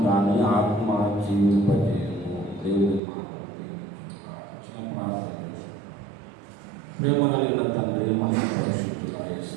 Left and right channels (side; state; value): left; drops out; at 3.0 s